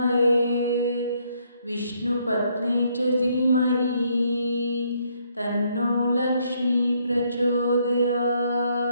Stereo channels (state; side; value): inverted; both; correlation -0.71